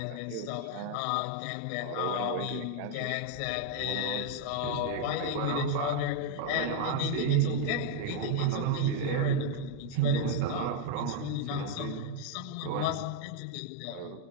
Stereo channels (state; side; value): different; both; correlation 0.01